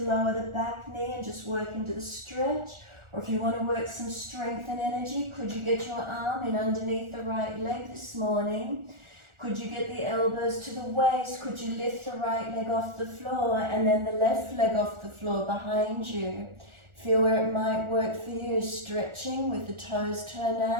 lower the back knee and just work into the stretch, or if you want to work some strength and energy, could you get your arm in underneath the right leg this morning? Could you get the elbows to the waist? Could you lift the right leg off the floor and then the left leg off the floor behind you? Feel where it might work for you, stretching with the toes turned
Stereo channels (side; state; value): left; late; 1.4 ms